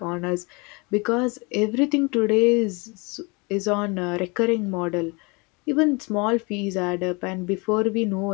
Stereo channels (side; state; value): right; quieter; 28.8 dB